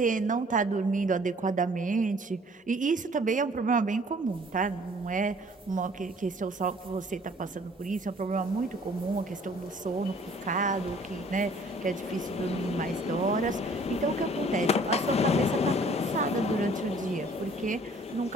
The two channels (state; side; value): normal; both; correlation 0.55